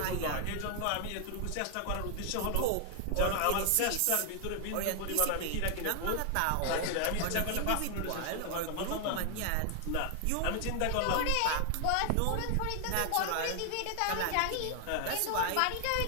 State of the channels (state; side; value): different; both; correlation 0.00